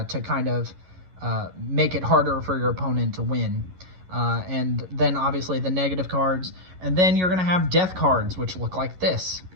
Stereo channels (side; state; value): left; late; 11 ms